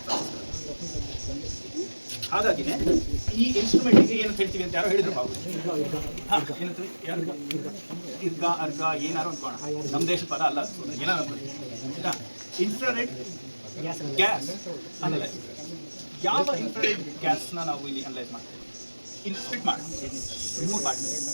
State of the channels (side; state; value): both; inverted; correlation -1.00